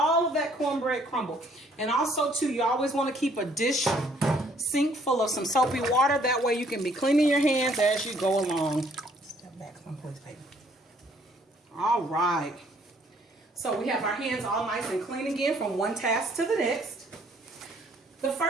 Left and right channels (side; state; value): both; normal; correlation 0.63